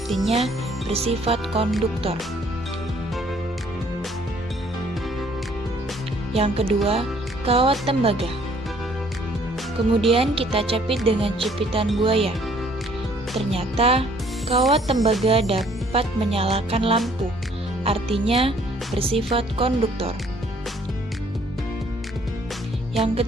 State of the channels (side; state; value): both; normal; correlation 0.61